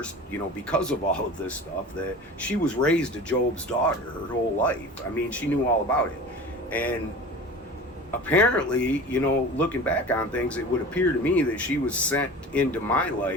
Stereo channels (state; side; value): normal; both; correlation 0.37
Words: because of all of this stuff, that she was raised a Job's daughter her whole life. I mean, she knew all about it. And apparently, looking back on things, it would appear to me that she was sent into my